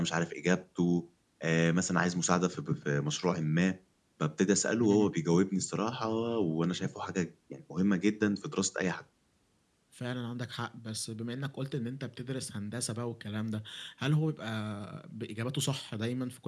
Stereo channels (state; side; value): identical; both; correlation 1.00